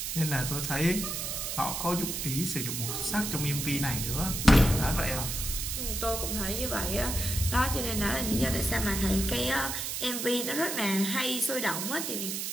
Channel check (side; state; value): right; noise; hiss, 3 dB below the sound